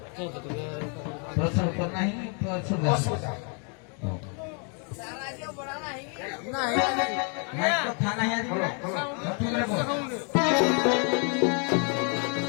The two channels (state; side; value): quieter; right; 38.1 dB